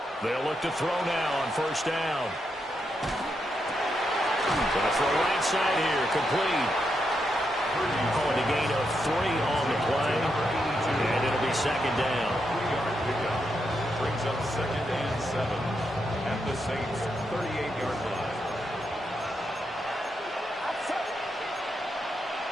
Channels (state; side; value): normal; both; correlation 0.83